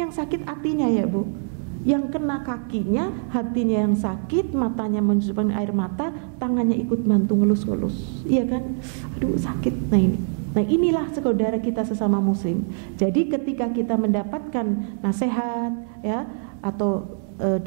sakit hatinya, ya, Bu. Yang kena kakinya, hatinya yang sakit, matanya menusukkan air mata, tangannya ikut bantu ngelus-ngelus, iya kan? Aduh, sakit. Nah inilah saudara kita sesama muslim. Jadi ketika kita mendapatkan nasihat, ya, atau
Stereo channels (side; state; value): left; silent; 61 dB below the other